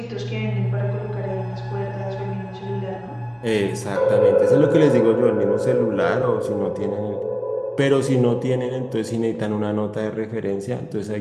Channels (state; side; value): identical; both; correlation 1.00